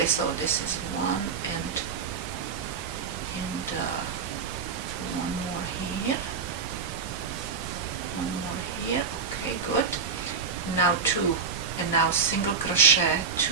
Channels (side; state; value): left; quieter; 5.7 dB